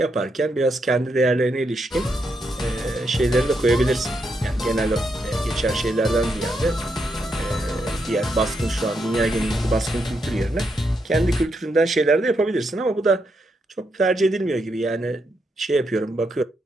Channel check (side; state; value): both; normal; correlation 0.81